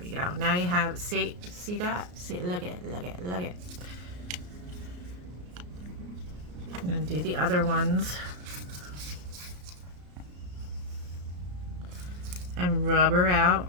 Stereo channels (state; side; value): late; left; 34 ms